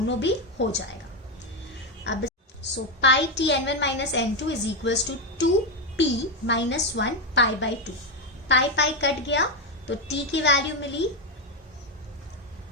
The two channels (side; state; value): both; normal; correlation 0.08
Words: भी हो जाएगा। अब so pi t n1 minus n2 is equals to 2p minus 1 pi by 2। Pi pi cut गया तो t की वैल्यू मिली